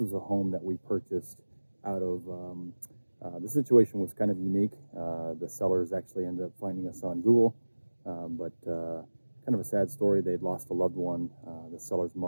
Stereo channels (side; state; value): both; inverted; correlation -1.00